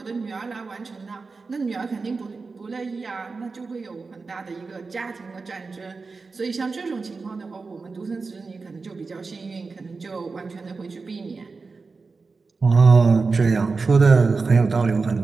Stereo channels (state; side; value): quieter; left; 4.3 dB